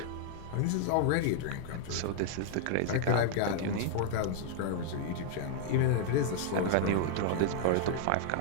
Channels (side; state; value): both; different; correlation 0.00